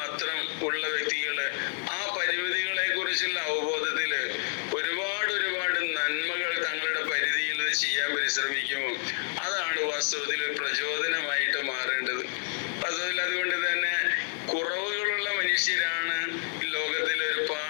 ഉള്ള വ്യക്തികള് ആ പരിമിതികളെ കുറിച്ചുള്ള അവബോധത്തില് ഒരുപാട് നന്മകൾ തങ്ങളുടെ പരിധിയിൽ ചെയ്യാൻ പരിശ്രമിക്കുമോ? അതാണ് വാസ്തവത്തിൽ പ്രചോദനമായിട്ട് മാറേണ്ടത്. അതുകൊണ്ട് തന്നെ കുറവുകളുള്ള മനുഷ്യരാണ് ലോകത്തിൽ ഒരു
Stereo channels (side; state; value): right; silent; digital silence